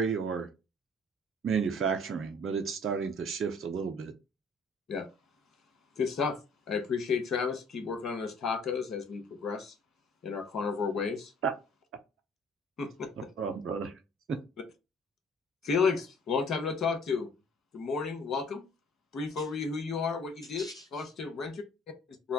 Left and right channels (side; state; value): both; normal; correlation 0.55